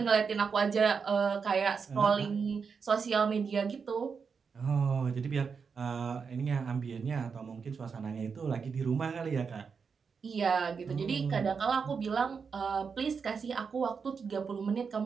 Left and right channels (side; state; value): left; quieter; 5.7 dB